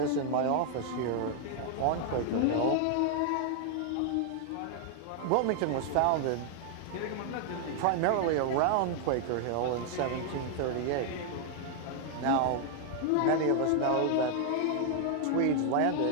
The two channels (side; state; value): both; different; correlation 0.00